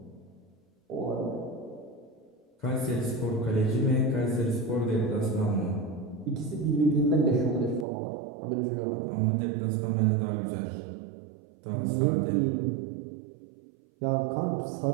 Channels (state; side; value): drops out; left; at 7.9 s